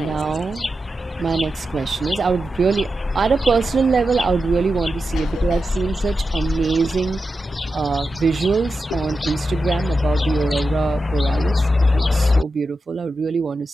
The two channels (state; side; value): normal; both; correlation 0.90